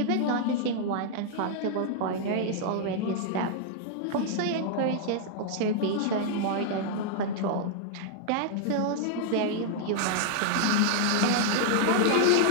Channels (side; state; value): both; different; correlation -0.01